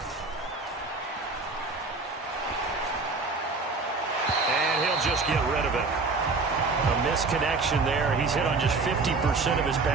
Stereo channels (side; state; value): left; quieter; 3.9 dB